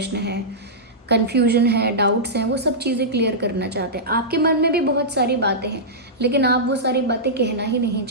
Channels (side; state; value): both; normal; correlation -0.13